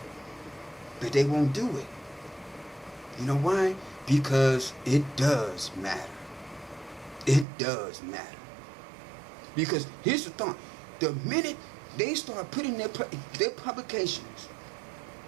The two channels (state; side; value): drops out; left; at 7.5 s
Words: But they won't do it. You know why? Because it does matter. It does matter. Because here's the thought. The minute they start putting their publications,